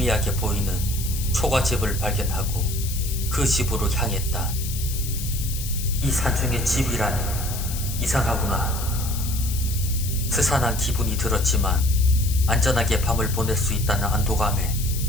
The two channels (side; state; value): left; noise; hiss, 8 dB below the sound